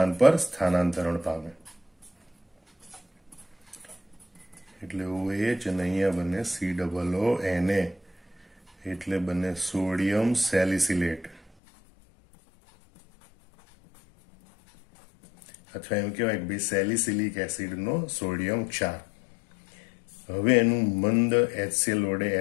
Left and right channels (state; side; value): drops out; right; at 11.4 s